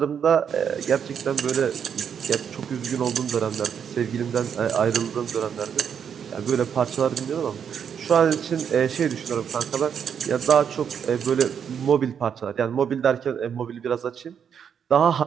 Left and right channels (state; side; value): quieter; left; 7.7 dB